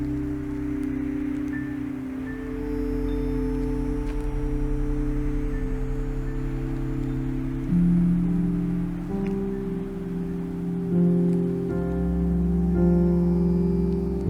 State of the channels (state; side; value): identical; both; correlation 1.00